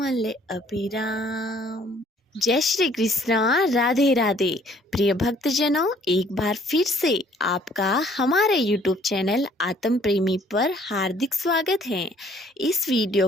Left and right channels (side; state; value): both; normal; correlation 0.59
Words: अभिराम। जय श्री कृष्णा, राधे राधे। प्रिय भक्तजनों, एक बार फिर से आपका हमारे YouTube चैनल आत्म प्रेमी पर हार्दिक स्वागत है। इस